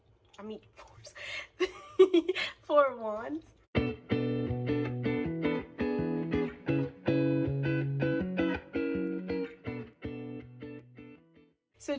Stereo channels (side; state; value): both; identical; correlation 1.00